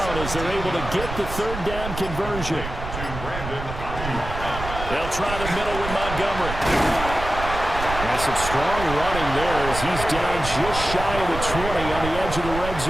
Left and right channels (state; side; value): noise; right; rumble, 8 dB below the sound